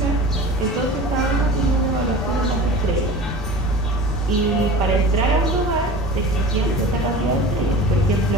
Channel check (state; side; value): normal; both; correlation 0.37